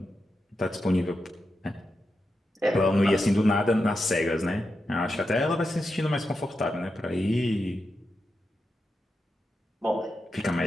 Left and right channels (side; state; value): both; normal; correlation 0.88